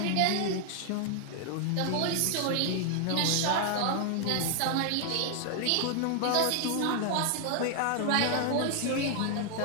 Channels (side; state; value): both; different; correlation 0.00